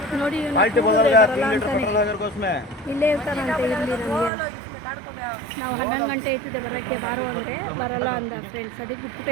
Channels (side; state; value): left; drops out; at 4.3 s